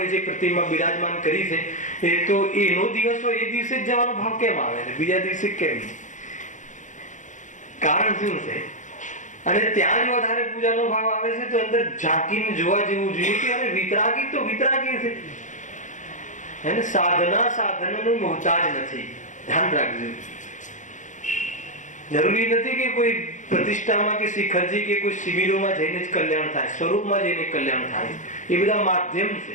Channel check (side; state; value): right; late; 0.36 ms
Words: જે પ્રતિમા બિરાજમાન કરી છે એ તો એનો દિવસ હોય એ દિવસે જ જવાનો ભાવ કેમ આવે છે, બીજા દિવસે કેમ? કારણ શું છે? અને ત્યાં જ વધારે પૂજાનો ભાવ આવે છે તો અંદર ઝાંકીને જોવા જેવું જોઈએ કે અરે વિતરાગી તો વિતરાગી છે. એને સાધના સાધનનું મોહતાજ નથી. ધ્યાન રાખજો. જરૂરી નથી કે કોઈ પ્રતિષ્ઠામાં કે શિખરજી કે કોઈ શિબિરોમાં જઈને જ કલ્યાણ થાય, સ્વરૂપમાં જઈને કલ્યાણ થાય. એ બધા માધ્યમ